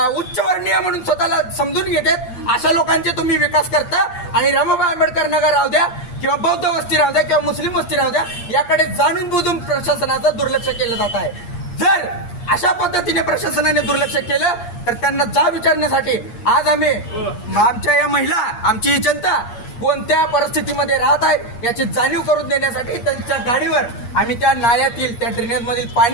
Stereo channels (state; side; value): late; right; 8.5 ms